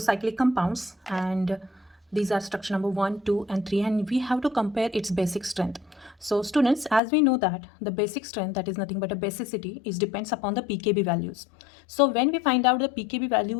compounds and these are structure number 1, 2 and 3 and we have to compare its basic strength. So students, as we know that the basic strength, that is nothing but a basicity, is depends upon the pKb values. So when we find out the pKb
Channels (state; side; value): drops out; right; at 7.0 s